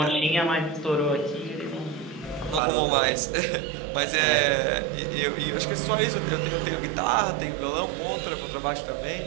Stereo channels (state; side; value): drops out; left; at 2.6 s